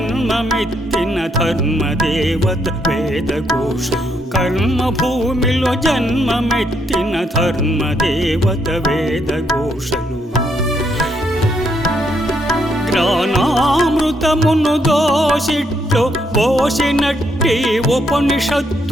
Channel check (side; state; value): both; normal; correlation 0.75